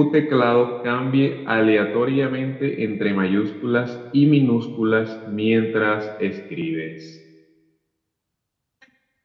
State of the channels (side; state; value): both; identical; correlation 1.00